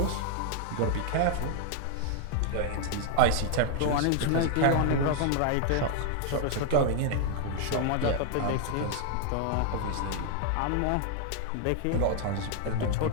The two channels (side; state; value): both; different; correlation 0.00